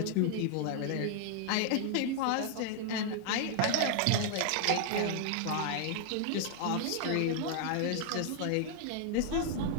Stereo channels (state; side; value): different; both; correlation 0.00